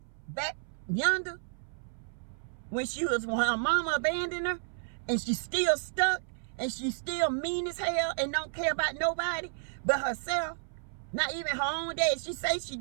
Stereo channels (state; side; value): silent; left; 57 dB below the other